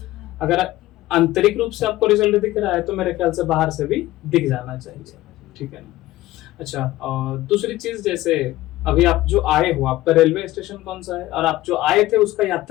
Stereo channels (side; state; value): right; quieter; 16.5 dB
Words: अगर आंतरिक रूप से आपको रिजल्ट दिख रहा है तो मेरे ख्याल से बाहर से भी दिख जाना चाहिए, ठीक है ना। अच्छा, और दूसरी चीज, जैसे अभी आप जो आए हो, आपका रेलवे स्टेशन कौन सा है, और आप जो आए थे उसका